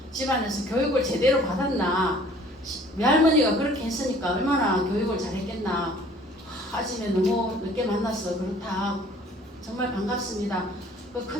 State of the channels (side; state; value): both; normal; correlation 0.54